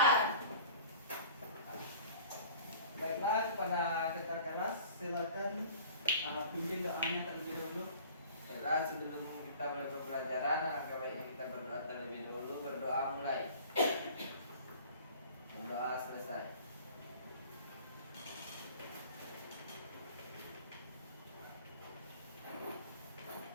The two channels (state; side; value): inverted; both; correlation -0.45